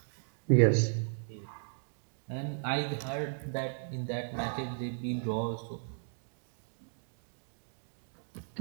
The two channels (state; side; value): silent; left; digital silence